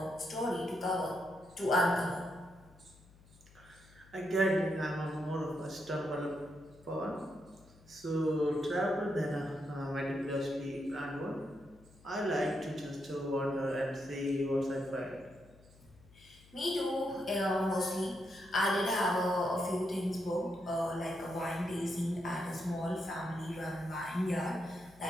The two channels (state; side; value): noise; left; hum, 25 dB below the sound